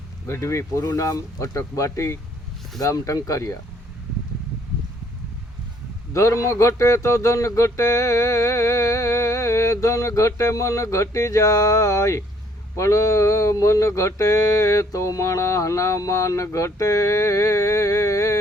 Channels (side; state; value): both; normal; correlation 0.63